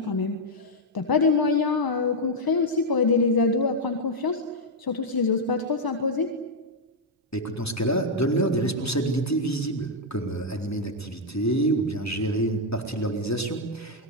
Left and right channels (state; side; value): normal; both; correlation -0.01